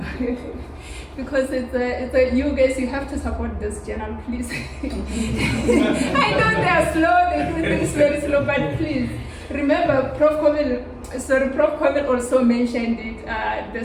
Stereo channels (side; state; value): both; identical; correlation 1.00